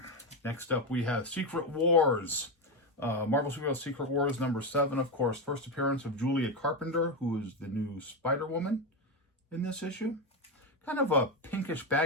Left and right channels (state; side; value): normal; both; correlation 0.11